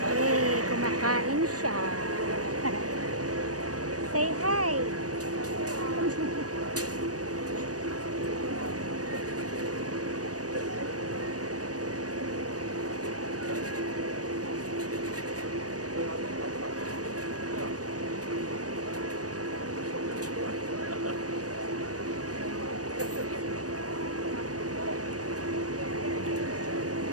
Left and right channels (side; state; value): left; late; 0.67 ms